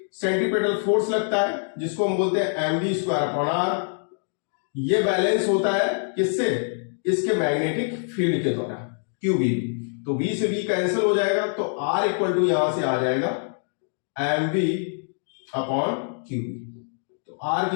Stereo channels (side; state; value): right; silent; digital silence